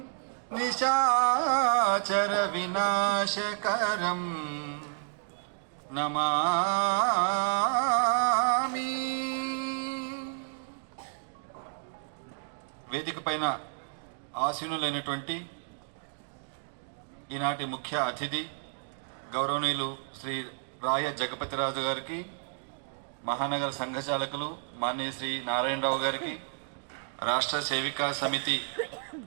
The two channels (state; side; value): silent; left; digital silence